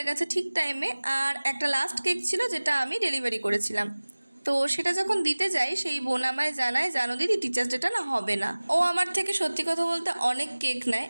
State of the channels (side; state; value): both; inverted; correlation -1.00